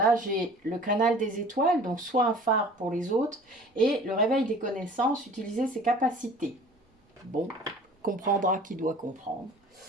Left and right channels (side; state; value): both; normal; correlation 0.46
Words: j'ai le canal des étoiles, donc soit un phare pour les autres, et le réveil des connaissances, utiliser ses capacités. Bon, comprendra qui doit comprendre.